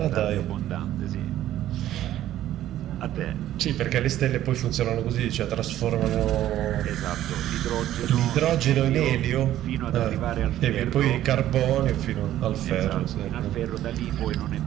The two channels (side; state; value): left; quieter; 12.9 dB